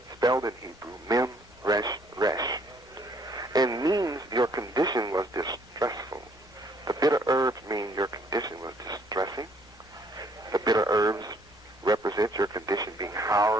spelled in Hebrew, mem, resh, resh, and means your condition was distressful. The bitter herbs mean your condition was distressing. The bitter herbs represent your condition being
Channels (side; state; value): left; noise; rumble, 27 dB below the sound